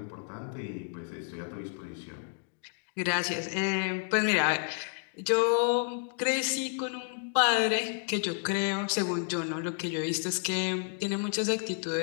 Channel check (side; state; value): right; silent; 57 dB below the other